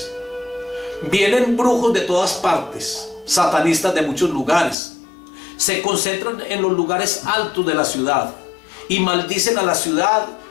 Vienen brujos de todas partes, satanistas de muchos lugares. Se concentran en los lugares altos de la ciudad y maldicen a la ciudad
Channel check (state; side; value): drops out; right; at 4.8 s